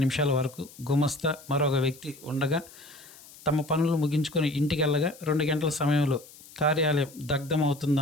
వరకు గుమస్తా మరొక వ్యక్తి ఉండగా తమ పనులు ముగించుకొని ఇంటికెళ్ళగా 2 గంటల సమయంలో కార్యాలయం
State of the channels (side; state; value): left; noise; hiss, 21 dB below the sound